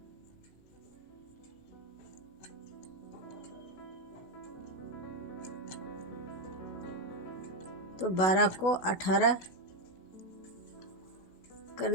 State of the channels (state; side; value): late; right; 16 ms